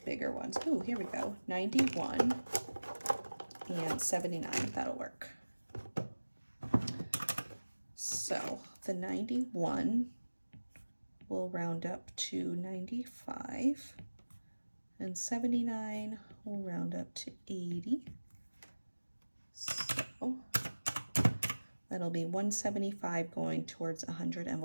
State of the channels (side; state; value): both; inverted; correlation -1.00